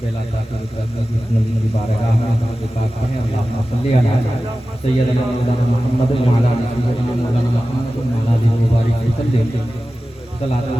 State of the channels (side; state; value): both; normal; correlation 0.95